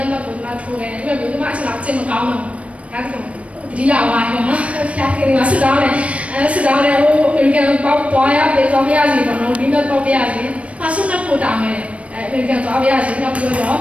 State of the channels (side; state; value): left; late; 0.063 ms